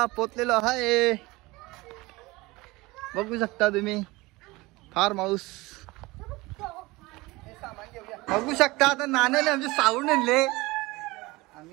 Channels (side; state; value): left; quieter; 21.8 dB